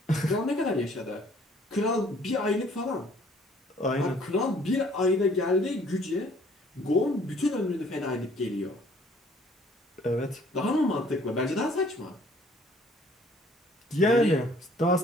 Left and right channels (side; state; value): both; normal; correlation 0.58